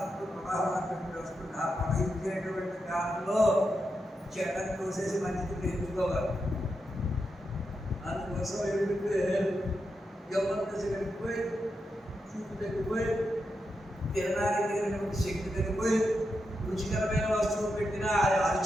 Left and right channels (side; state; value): both; normal; correlation 0.86